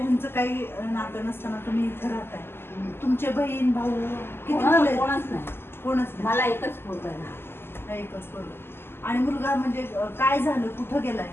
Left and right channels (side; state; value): right; late; 0.11 ms